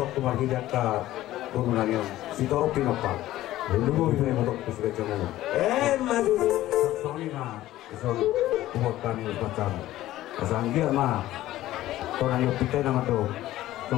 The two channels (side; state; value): right; quieter; 14.9 dB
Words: tuh margi jaka turunannya si toro pinopal Lubu bisa yang botok terus kecil ngomong. Madu. Soalnya ison buat kami macam asal dia mah orang yang kita nama tu